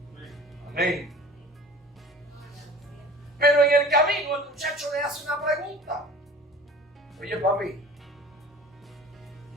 Amén. Pero en el camino el muchacho le hace una pregunta. Oye, papi,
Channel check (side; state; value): both; normal; correlation 0.43